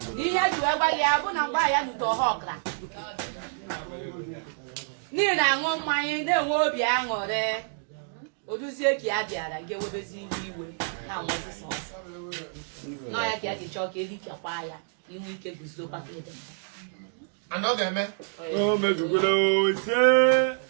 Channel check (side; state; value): left; silent; digital silence